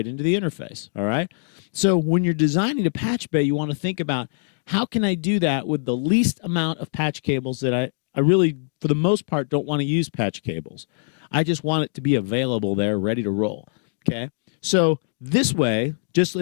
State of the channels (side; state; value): right; silent; digital silence